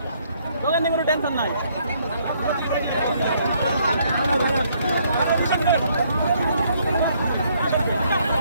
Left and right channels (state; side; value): inverted; both; correlation -0.68